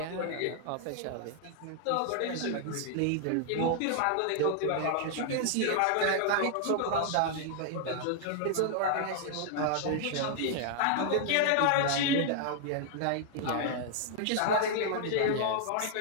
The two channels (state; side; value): different; both; correlation -0.01